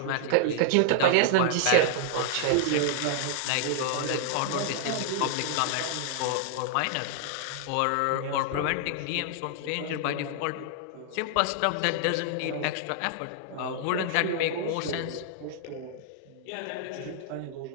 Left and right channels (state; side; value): different; both; correlation 0.00